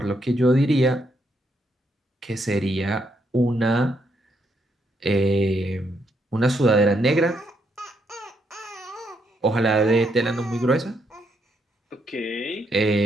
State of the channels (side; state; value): both; normal; correlation 0.77